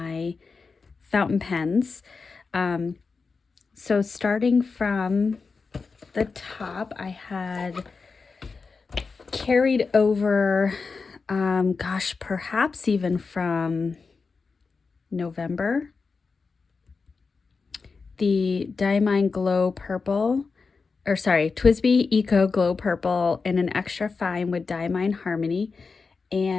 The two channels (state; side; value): quieter; right; 4.6 dB